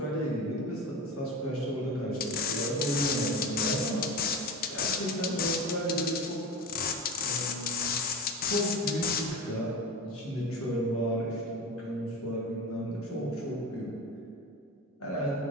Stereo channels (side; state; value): both; normal; correlation 0.28